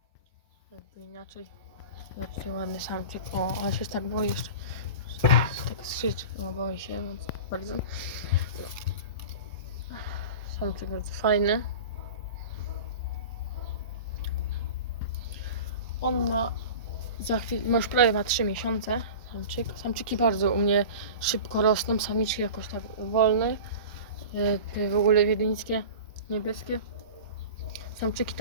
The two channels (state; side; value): inverted; both; correlation -0.34